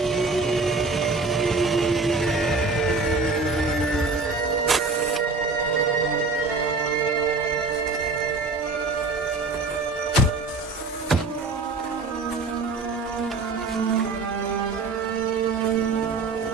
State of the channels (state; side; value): quieter; left; 3.8 dB